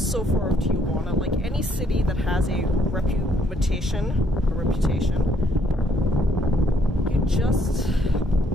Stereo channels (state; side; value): normal; both; correlation 0.68